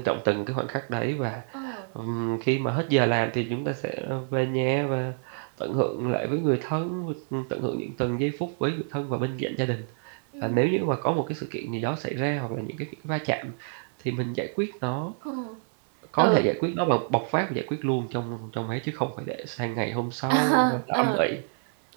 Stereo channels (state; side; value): silent; left; 60 dB below the other